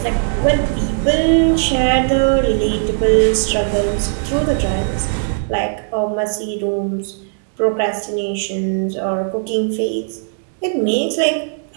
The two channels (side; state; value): left; silent; digital silence